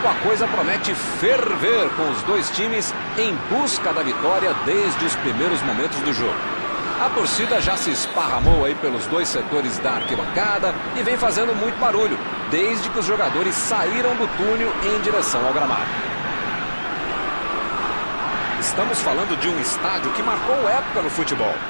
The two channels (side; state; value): both; inverted; correlation -1.00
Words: a coisa promete ferver, com os dois times em busca da vitória desde os primeiros momentos do jogo. A torcida já se esparramou aí pelos dois setores da arquibancada e vem fazendo muito barulho, desde que os jogadores saíram do túnel em direção ao gramado. Estamos falando de um estádio que marcou época no futebol,